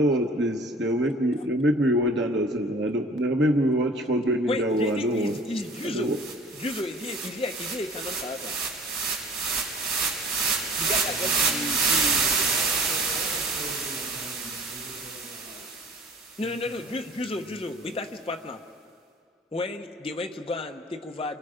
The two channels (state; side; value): normal; both; correlation 0.47